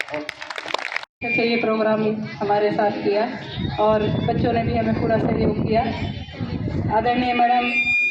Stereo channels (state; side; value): identical; both; correlation 1.00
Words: अच्छा, ये प्रोग्राम हमारे साथ किया और बच्चों ने भी हमें पूरा सहयोग किया। आदरणीय मैडम